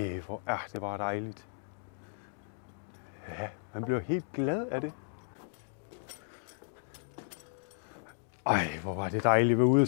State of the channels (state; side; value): silent; right; digital silence